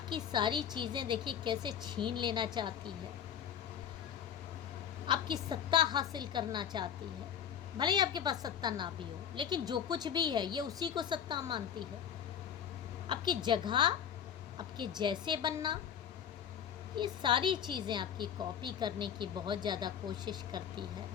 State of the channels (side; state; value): right; quieter; 8.7 dB